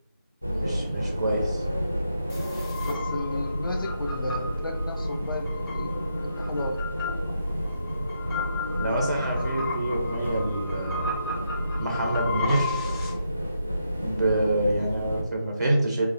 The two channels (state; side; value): inverted; both; correlation -0.80